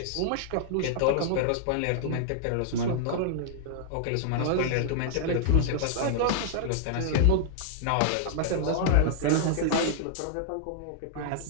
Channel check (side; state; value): both; different; correlation -0.01